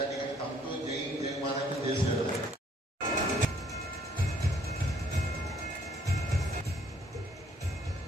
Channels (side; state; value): both; normal; correlation 0.64